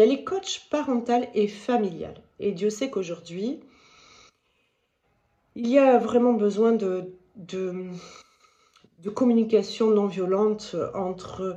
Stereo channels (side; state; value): both; identical; correlation 1.00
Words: est coach parentale et familiale. Et Dieu sait qu'aujourd'hui, il y a vraiment besoin de communication non violente